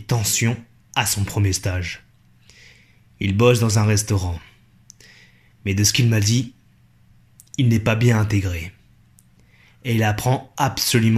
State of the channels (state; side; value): identical; both; correlation 1.00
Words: tensions à son premier stage. Il bosse dans un restaurant. Mais de ce qu'il m'a dit, il n'est pas bien intégré. Et il apprend